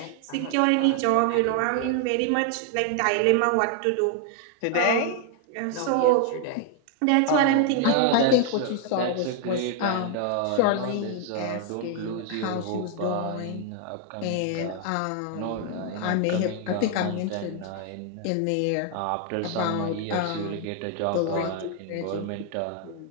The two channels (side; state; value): both; different; correlation 0.00